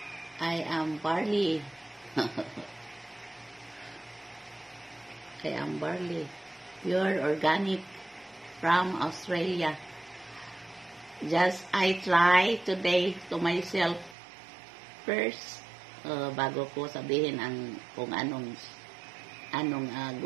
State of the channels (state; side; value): drops out; left; at 14.2 s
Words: I am Barley. I am Barley, pure organic from Australia. Just I try today to myself first, bago ko sabihin kung anong